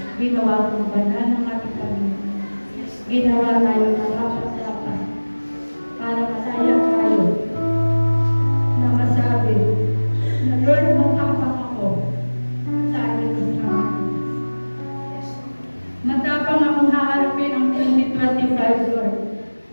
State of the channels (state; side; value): inverted; both; correlation -1.00